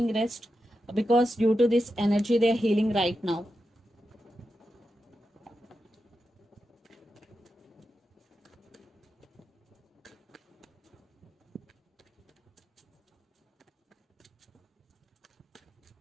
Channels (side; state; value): both; normal; correlation 0.89